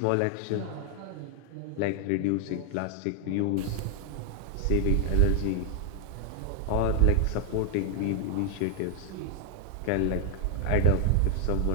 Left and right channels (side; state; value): both; different; correlation 0.00